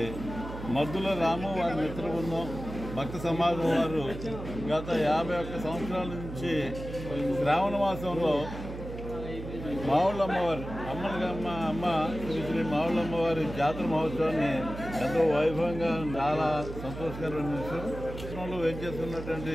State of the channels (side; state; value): right; noise; hum, 10 dB below the sound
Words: మద్దుల రాము వారి మిత్ర బృందం భక్త సమాజం వారు గత 51 సంవత్సరాల నుంచి శ్రావణమాసంలో మావుళ్ళమ్మవారి అమ్మ శ్రీ మావుళ్ళమ్మవారి జాతర మహోత్సవాన్ని ఎంతో వైభవంగా చాలా సంతోషకరమైన విషయంలో వేచేస్తున్నటువంటి